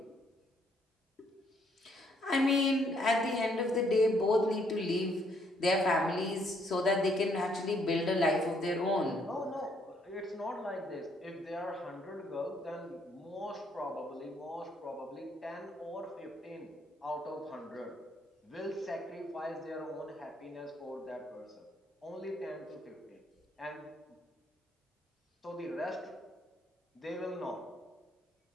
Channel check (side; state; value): both; normal; correlation 0.69